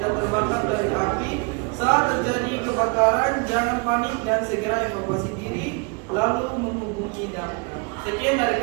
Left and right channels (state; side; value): quieter; left; 30.8 dB